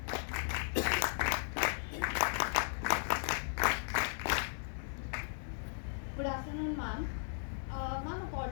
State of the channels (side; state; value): right; silent; digital silence